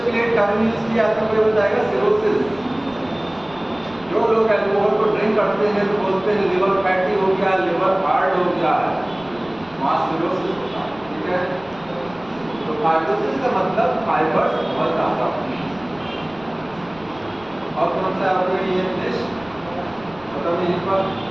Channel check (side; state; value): right; noise; rumble, 25 dB below the sound